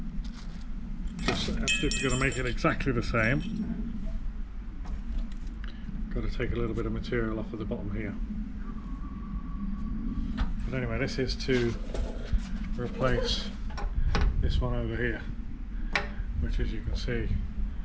Just actually going to make it exactly the same. Got to take a little bit of material off of the bottom here. But anyway, this is to replace this one over here, which, as you can see,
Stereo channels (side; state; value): both; identical; correlation 1.00